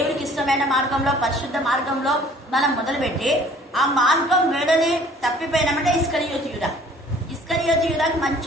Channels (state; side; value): normal; both; correlation 0.53